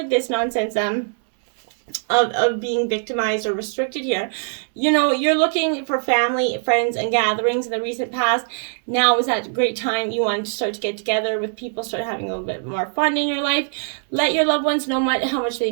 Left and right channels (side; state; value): left; silent; 62 dB below the other